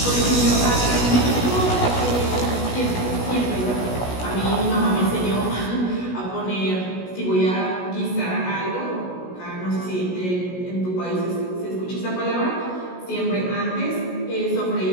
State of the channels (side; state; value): right; late; 16 ms